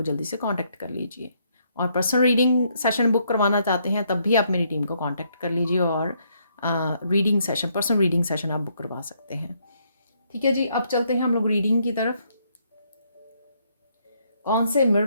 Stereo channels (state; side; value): inverted; both; correlation -0.72